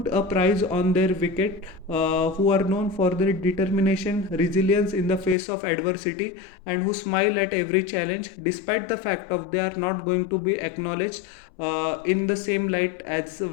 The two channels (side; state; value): right; drops out; at 5.4 s